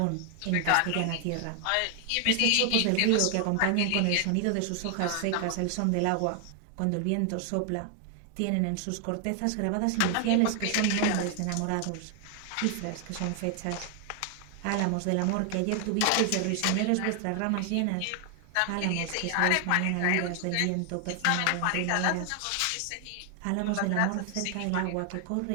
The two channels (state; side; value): different; both; correlation 0.00